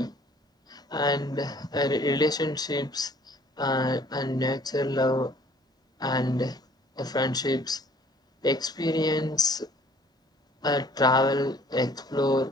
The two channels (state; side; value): normal; both; correlation 0.55